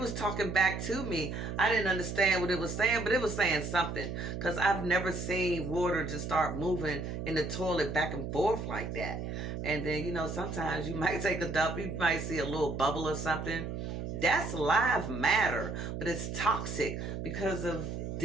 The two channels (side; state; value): right; noise; hum, 5 dB below the sound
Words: talking back to me. I didn't understand what it was saying, but it was saying something. Because I've never seen water just start moving in the toilet back and forth like that. And then, you know, sometimes you might take a dump. You might see a little bubble or something. That's live matter. But it's toxic because of